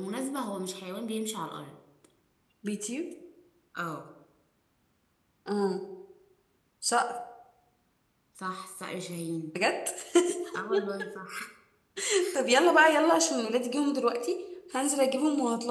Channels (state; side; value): identical; both; correlation 1.00